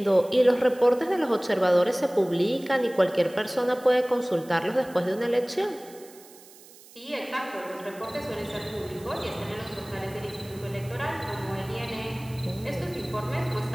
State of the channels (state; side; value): noise; right; hiss, 22 dB below the sound